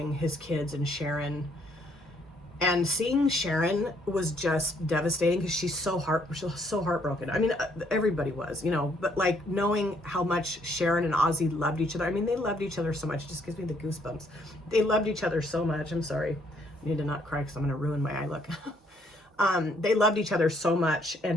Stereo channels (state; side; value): normal; both; correlation 0.68